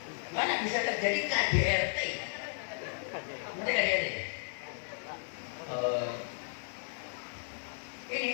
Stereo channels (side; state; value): right; silent; 55 dB below the other